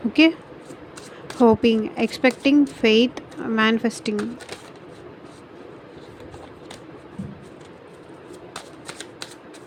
Okay. Hoping, expecting, faith, manifesting.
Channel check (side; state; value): both; identical; correlation 1.00